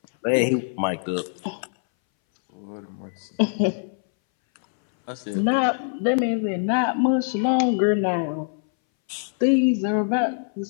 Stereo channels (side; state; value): right; silent; 61 dB below the other